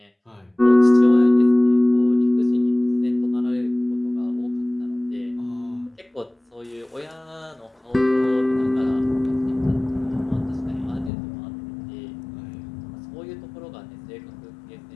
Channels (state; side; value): drops out; right; at 11.1 s